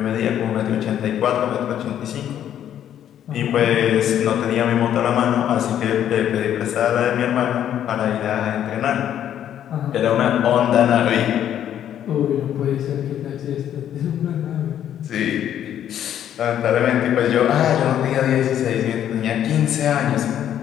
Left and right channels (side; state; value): right; quieter; 10.4 dB